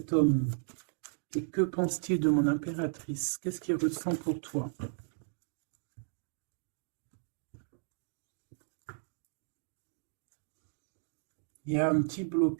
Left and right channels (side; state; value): left; silent; digital silence